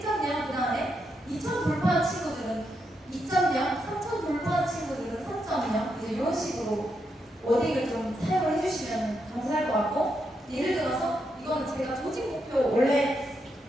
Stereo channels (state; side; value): normal; both; correlation 0.82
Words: 그 다음에 2000 돌파한 친구들은 2.0, 3000 돌파한 친구들은 3.0 이제 이런 식으로 워딩을 좀 사용을 해주시면 감사할 것 같고, 예를 들어서 이거는 제가 조직 목표 원래